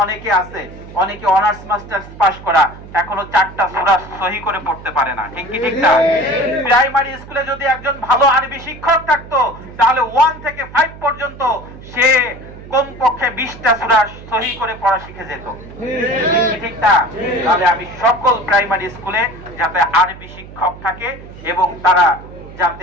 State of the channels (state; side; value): noise; right; hum, 16 dB below the sound